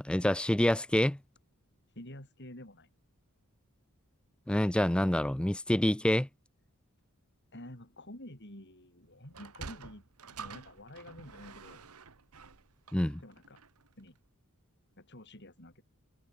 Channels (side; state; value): both; normal; correlation 0.94